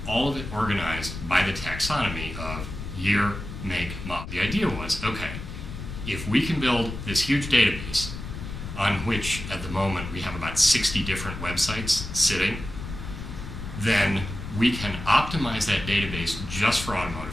all of it organized by the taxonomy of year, make, model. The idea was, okay, if we can build this huge database on which at the moment we have about 60 different websites sitting, then we can optimize that database just for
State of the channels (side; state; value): left; noise; rumble, 8 dB below the sound